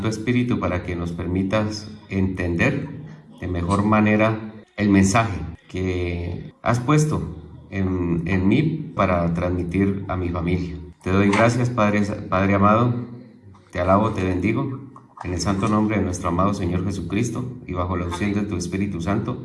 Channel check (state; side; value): identical; both; correlation 1.00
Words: Espíritu para que nos permitas entender de mejor manera el mensaje que has puesto en mí para transmitir a mi familia. Te doy gracias, Padre amado, te alabo, te bendigo, en el santo nombre de nuestro amado Señor Jesucristo y bajo la unción de tu Espíritu